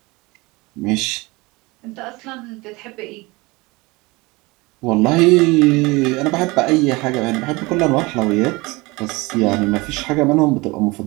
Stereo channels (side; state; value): left; quieter; 23.7 dB